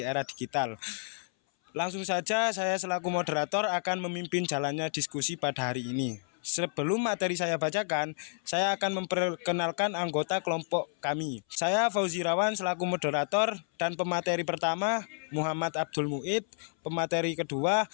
era digital. Langsung saja saya selaku moderator akan memimpin jalannya diskusi pada hari ini. Sebelum materi saya bacakan, saya akan memperkenalkan anggota kelompok kami. Saya Fauzi Rawan selaku moderator dan pemateri pertama Muhammad Abdul Muid, pemateri kedua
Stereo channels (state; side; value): silent; right; 58 dB below the other